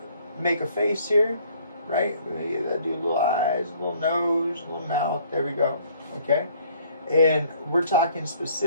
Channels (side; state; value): both; inverted; correlation -0.59